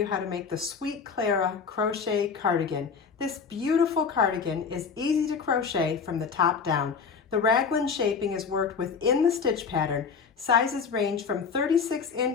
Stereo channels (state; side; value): quieter; right; 5.8 dB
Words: how to make the Sweet Clara crochet cardigan. This beautiful cardigan is easy to crochet from the top down. The raglan shaping is worked within the stitch pattern. Sizes range from